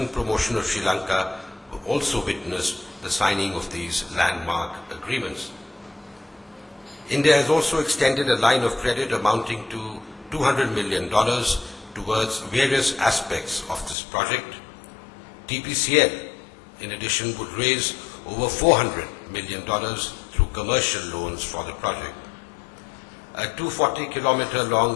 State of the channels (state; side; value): drops out; right; at 14.0 s